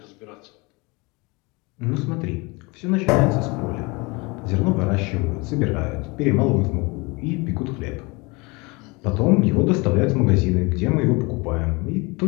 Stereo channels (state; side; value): quieter; right; 26.6 dB